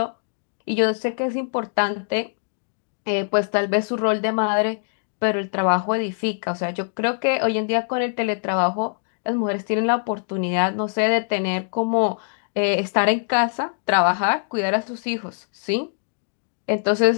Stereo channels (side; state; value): right; silent; digital silence